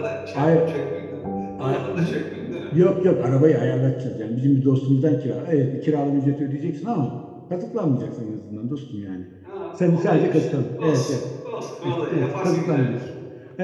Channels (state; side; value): identical; both; correlation 1.00